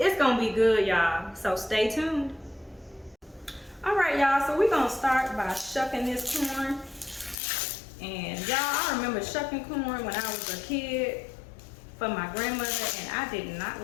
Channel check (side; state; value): right; drops out; at 7.4 s